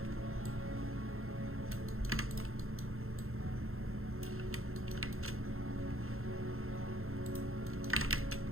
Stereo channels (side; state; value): left; late; 0.62 ms